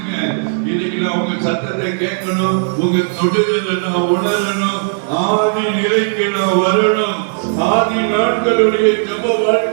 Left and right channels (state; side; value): silent; left; digital silence